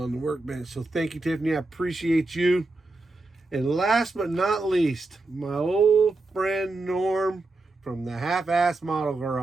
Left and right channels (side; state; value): left; quieter; 3.1 dB